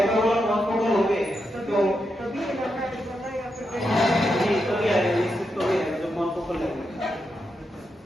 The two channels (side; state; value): both; normal; correlation 0.85